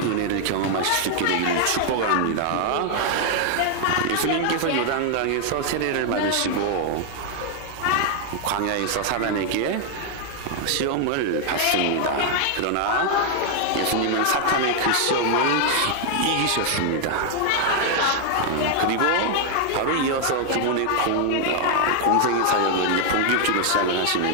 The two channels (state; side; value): different; both; correlation 0.00